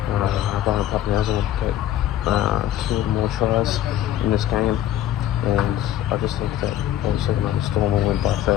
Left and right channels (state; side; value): quieter; right; 12.0 dB